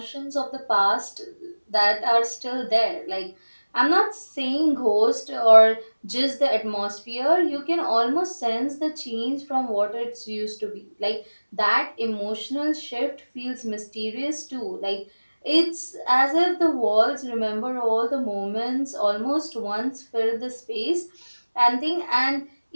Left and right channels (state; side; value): inverted; both; correlation -1.00